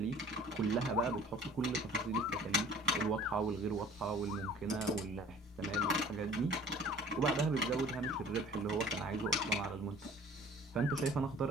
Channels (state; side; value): normal; both; correlation 0.49